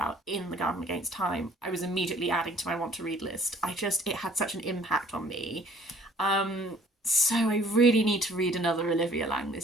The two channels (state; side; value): normal; both; correlation 0.55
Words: in The Garden Against Time, I was immediately adding to my want to read list. It had such an impact on me. So I really need to read another Olivia Laing